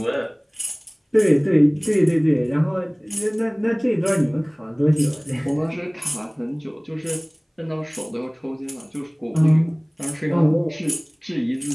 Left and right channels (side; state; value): both; identical; correlation 1.00